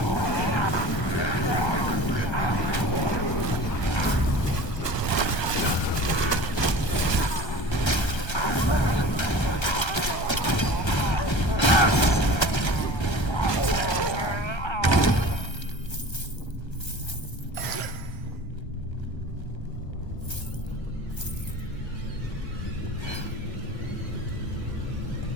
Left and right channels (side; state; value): right; late; 1.3 ms